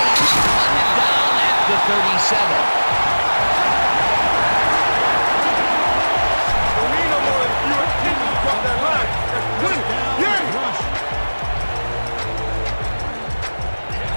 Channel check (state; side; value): inverted; both; correlation -1.00